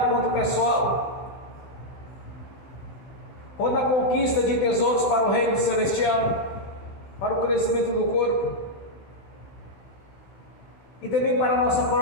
quanto pessoal, quanto na conquista de tesouros para o reino celestial, para o crescimento do corpo, e também para a nossa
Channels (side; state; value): right; late; 16 ms